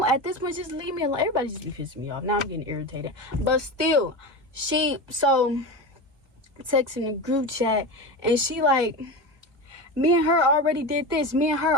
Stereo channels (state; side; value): late; left; 1.8 ms